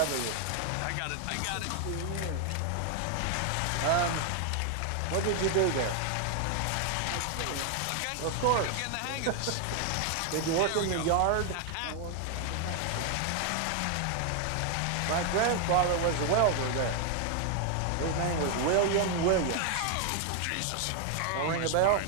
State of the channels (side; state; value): both; different; correlation 0.00